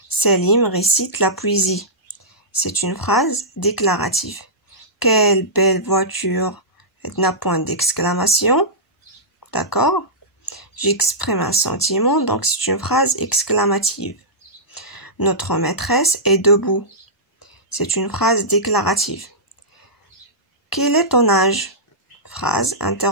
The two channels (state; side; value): normal; both; correlation -0.15